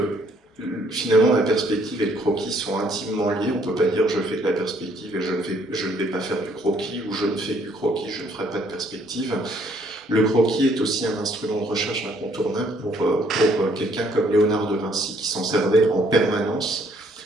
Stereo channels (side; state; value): both; normal; correlation 0.65